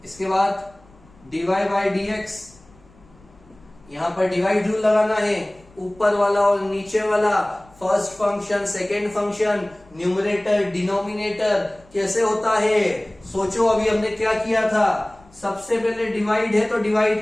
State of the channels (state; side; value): noise; left; rumble, 27 dB below the sound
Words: इसके बाद dy बाई dx, यहां पर डिवाइड रूल लगाना है, ऊपर वाला और नीचे वाला, first function, second function, numerator, denominator, कैसे होता है? सोचो अभी हमने क्या किया था। सबसे पहले डिवाइड है तो